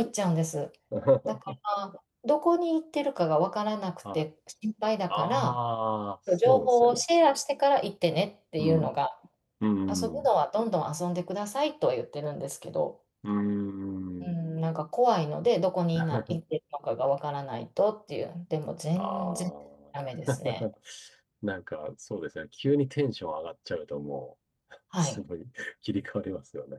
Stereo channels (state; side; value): identical; both; correlation 1.00